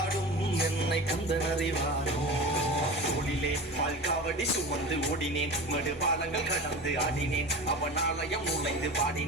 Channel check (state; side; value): normal; both; correlation 0.32